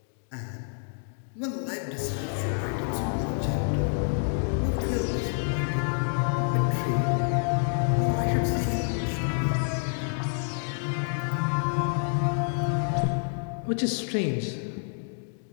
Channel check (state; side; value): silent; right; 59 dB below the other